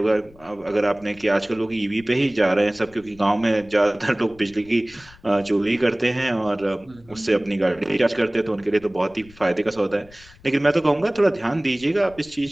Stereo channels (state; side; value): noise; left; rumble, 25 dB below the sound